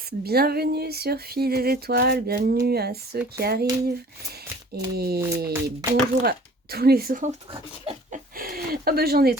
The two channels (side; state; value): both; normal; correlation 0.49